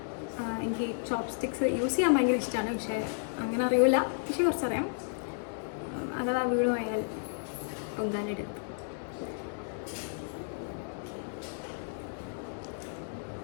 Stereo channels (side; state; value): right; silent; 56 dB below the other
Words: എനിക്ക് ചോപ്സ്റ്റിക്സ് യൂസ് ചെയ്യാൻ ഭയങ്കര ഇഷ്ടമാണ്. പക്ഷേ അങ്ങനെ അറിയില്ല. പക്ഷെ കുറച്ചറിയാം. അഥവാ വീട് പോയാൽ പൊങ്കാലെടുത്ത്